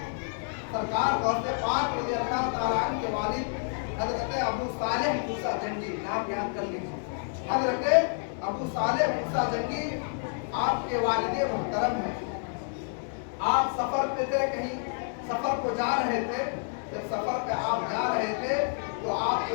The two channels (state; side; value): silent; right; 59 dB below the other